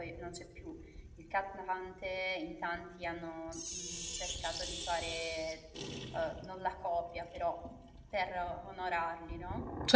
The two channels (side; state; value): both; identical; correlation 1.00